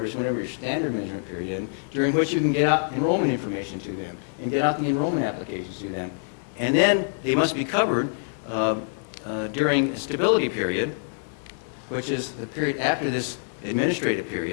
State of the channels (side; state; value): right; silent; digital silence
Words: your standard measurement period is, during which you can get out enrollment information to them and get out the enrollment applications to them. And then they must be covered during a stability period, which is the period after this administrative